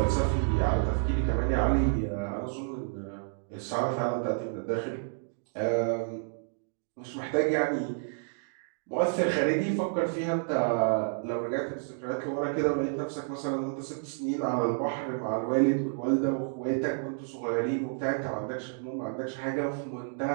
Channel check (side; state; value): left; silent; digital silence